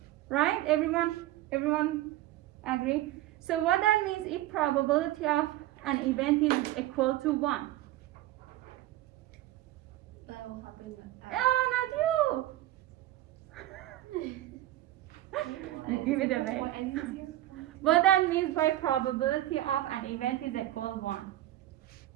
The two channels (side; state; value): left; quieter; 15.0 dB